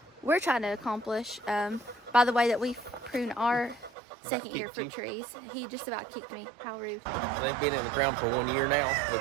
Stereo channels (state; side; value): drops out; left; at 3.9 s